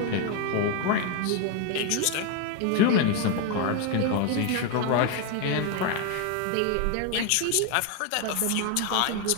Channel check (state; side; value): different; both; correlation 0.01